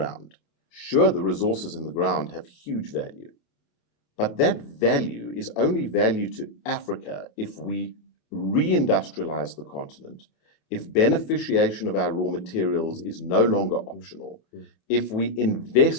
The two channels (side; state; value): right; late; 28 ms